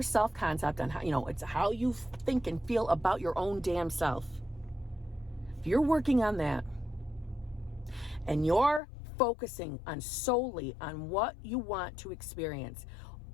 self-concept, on how, it's how you think and feel about your own damn self. If you're working on that and you're focusing on solely on what you want to experience,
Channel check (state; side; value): drops out; right; at 8.8 s